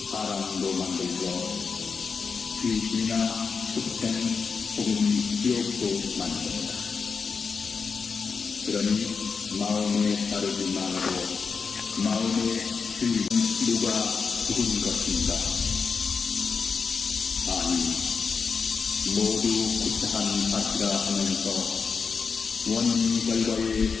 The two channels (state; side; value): quieter; right; 5.3 dB